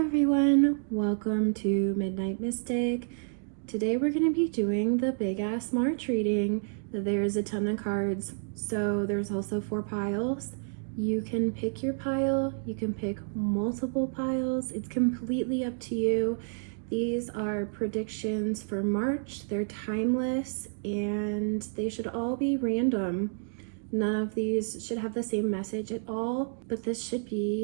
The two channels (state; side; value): silent; left; digital silence